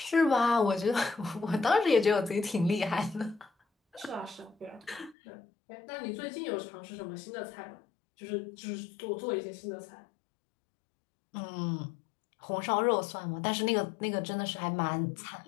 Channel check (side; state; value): right; drops out; at 5.2 s